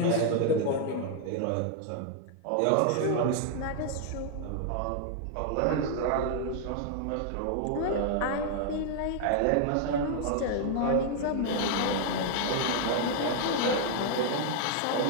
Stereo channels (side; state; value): both; different; correlation 0.00